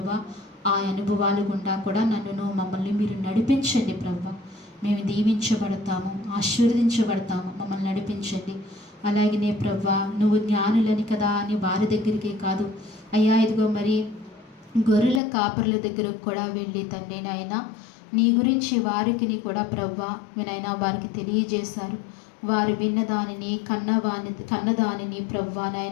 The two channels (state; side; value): drops out; right; at 15.2 s